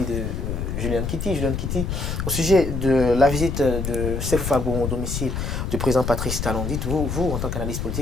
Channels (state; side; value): noise; left; rumble, 3 dB below the sound